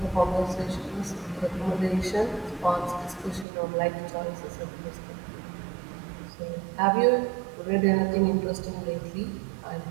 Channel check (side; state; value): left; drops out; at 3.5 s